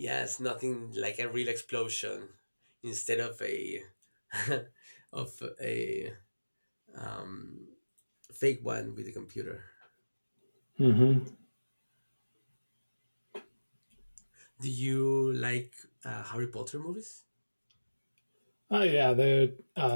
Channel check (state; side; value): inverted; both; correlation -1.00